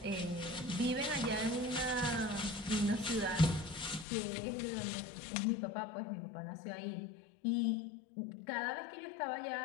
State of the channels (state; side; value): drops out; right; at 4.0 s